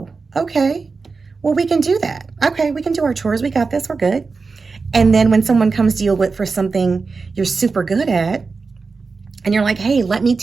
okay, well, we can do that. Okay, we can do our chores. We got this. We're good. And then when someone comes to you with for something you're super good at, and you're like, hey, let me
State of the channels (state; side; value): quieter; left; 4.4 dB